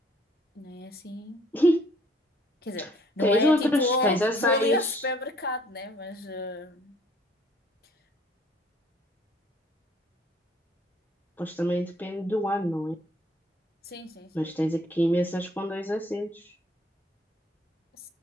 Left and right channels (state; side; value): normal; both; correlation 0.60